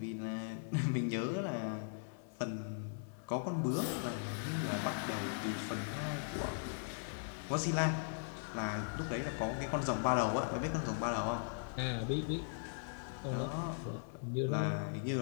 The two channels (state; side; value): silent; right; 52 dB below the other